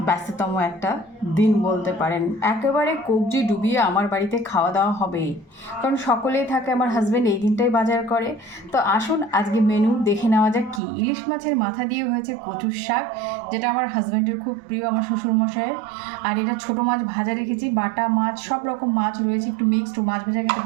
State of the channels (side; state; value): left; drops out; at 10.8 s